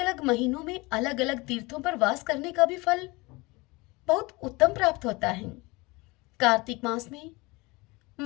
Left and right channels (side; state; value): right; quieter; 24.0 dB